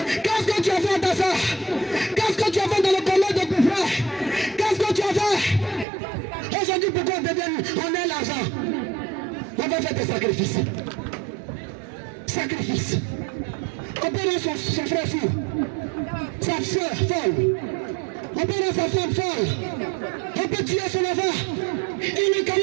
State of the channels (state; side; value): drops out; left; at 5.9 s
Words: Qu'est-ce que tu as fait à ta soeur? Qu'est-ce que tu as fait dans le commun de ton frère? Qu'est-ce que tu as fait? Aujourd'hui, pourquoi on a l'argent? On va faire des sacrifices. Sacrifice. On peut rendre son frère fou, sa soeur folle. On peut rendre sa femme folle. On peut tuer son enfant.